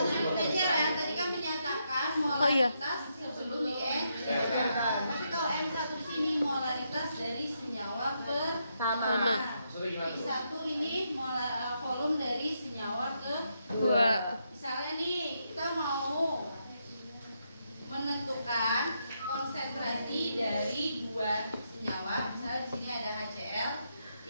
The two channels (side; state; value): both; inverted; correlation -0.80